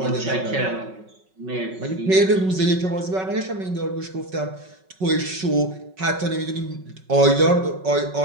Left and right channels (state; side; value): late; left; 5.4 ms